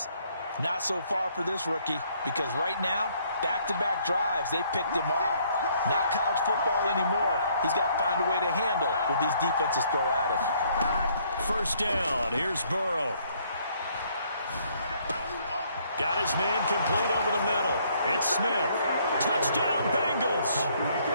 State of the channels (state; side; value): inverted; both; correlation -0.66